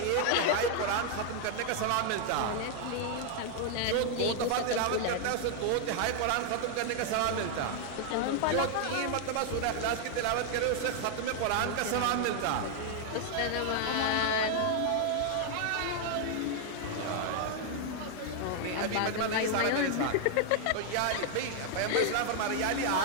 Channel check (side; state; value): both; different; correlation 0.00